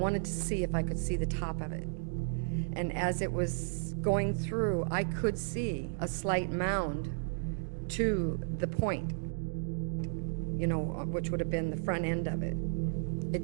to see if I could see the top of it. And as it was going through, I could see a slight mound to the point, which would have been the front end of it. It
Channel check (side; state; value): left; silent; digital silence